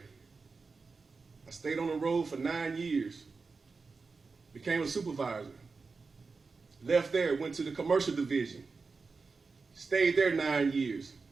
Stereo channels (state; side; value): quieter; left; 4.4 dB